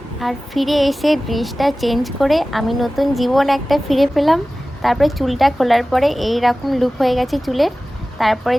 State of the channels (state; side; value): normal; both; correlation 0.97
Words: আর ফিরে এসে ড্রেসটা চেঞ্জ করে আমি নতুন জীবন একটা ফিরে পেলাম। তারপরে চুলটা খোলার পরে এই রকম লুক হয়ে গেছে চুলের। তারপরে